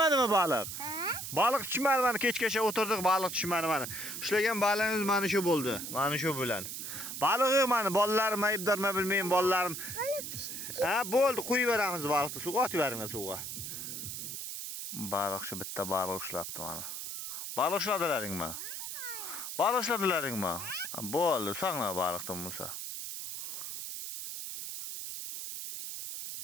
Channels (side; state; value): right; noise; hiss, 6 dB below the sound